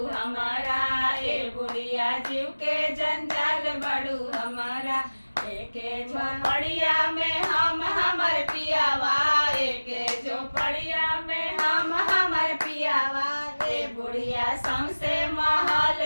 हमारा, ए बुढ़िया जीव के जंजाल बड़ू हमारा। एके झोपड़िया में हम हमर पियावा, एके झोपड़िया में हम हमर पियावा। ए बुढ़िया सौंसे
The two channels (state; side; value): inverted; both; correlation -1.00